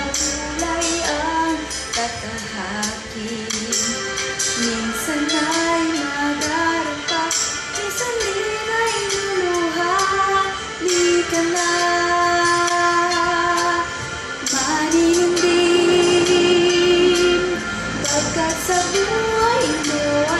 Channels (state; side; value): identical; both; correlation 1.00